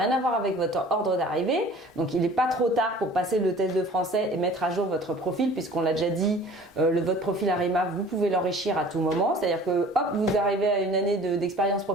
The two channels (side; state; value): both; normal; correlation 0.47